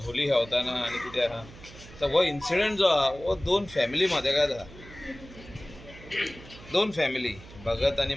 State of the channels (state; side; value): noise; right; hum, 18 dB below the sound